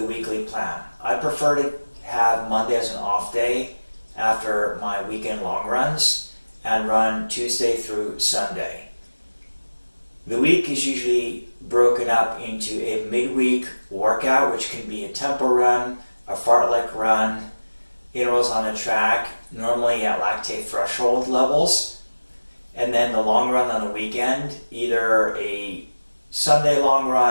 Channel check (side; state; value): both; inverted; correlation -1.00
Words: weekly plan. I prefer to have Monday as an off day after my weekend long runs and run Tuesday through Sunday. The week is usually broken up into a midweek workout, which can be a tempo run, a fartlek run, intervals on the track, normally at lactate threshold levels, and then the long run on the weekend, either a Sunday long